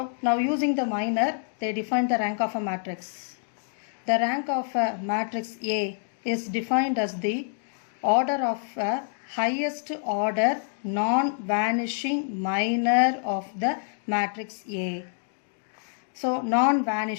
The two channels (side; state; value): right; silent; digital silence